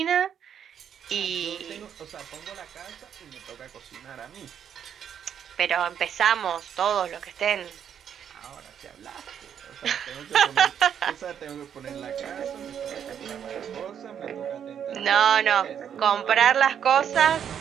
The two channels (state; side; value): quieter; left; 8.6 dB